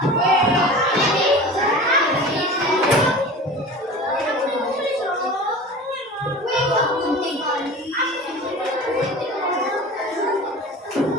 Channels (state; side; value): normal; both; correlation 0.36